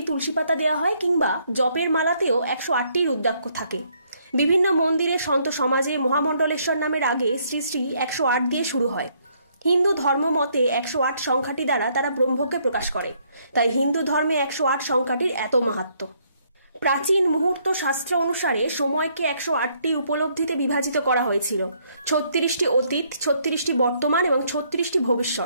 তুলসী পাতা দেওয়া হয়, কিংবা জপের মালাতেও 108টি রুদ্রাক্ষ থাকে। বিভিন্ন মন্দিরে সন্ত সমাজে মহামণ্ডলেশ্বর নামের আগে শ্রী শ্রী 108 দিয়ে শুরু হয়। হিন্দু ধর্ম মতে 108 সংখ্যাটি দ্বারা তারা ব্রহ্মকে প্রকাশ করে, তাই হিন্দু ধর্মে 108 সংখ্যাটির এত মাহাত্ম্য। প্রাচীন মুহূর্ত শাস্ত্র অনুসারে সময়কে 108টি উপলব্ধিতে বিভাজিত করা হয়েছিল। 36টি অতীত, 36টি বর্তমান এবং 36টি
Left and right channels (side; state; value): both; inverted; correlation -0.69